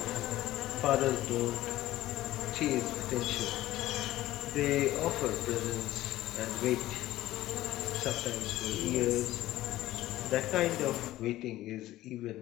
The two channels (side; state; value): right; quieter; 15.4 dB